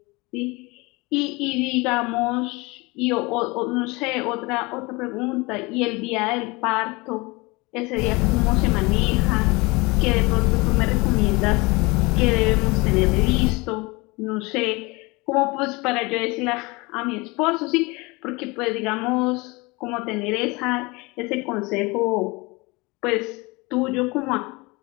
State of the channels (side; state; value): right; quieter; 25.0 dB